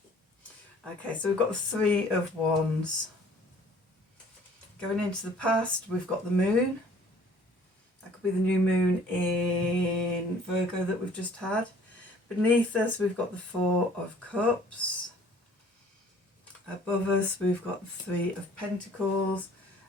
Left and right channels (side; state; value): both; normal; correlation 0.54